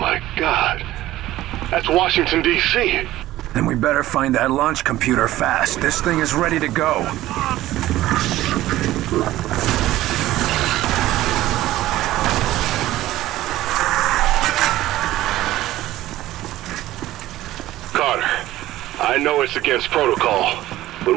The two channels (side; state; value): left; quieter; 15.4 dB